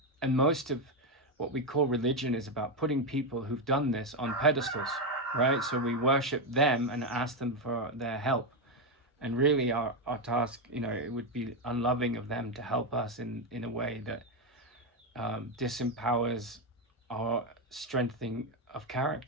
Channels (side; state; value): both; normal; correlation 0.07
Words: most of what we call religion is about putting people who've done this on pedestals, right? So we worship them and ask them for their help. And really our task, it would be unloving of them to help us in a way that disempowers our strengthening of